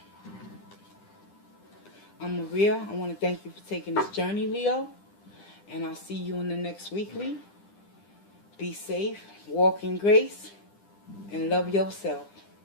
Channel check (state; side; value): late; right; 9.9 ms